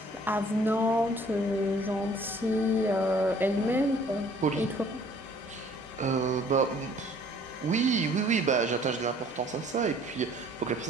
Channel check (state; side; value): normal; both; correlation 0.56